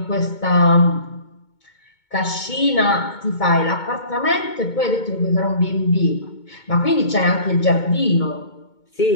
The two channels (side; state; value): right; late; 2.2 ms